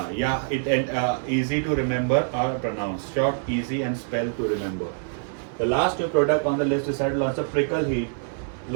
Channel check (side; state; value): left; silent; 57 dB below the other